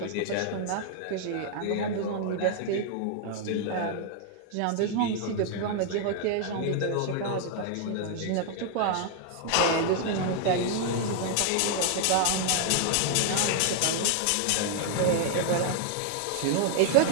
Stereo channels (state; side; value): different; both; correlation 0.00